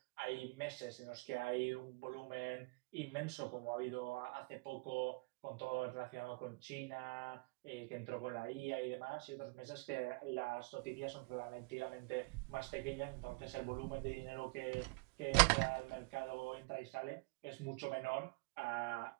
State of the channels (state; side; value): quieter; left; 29.1 dB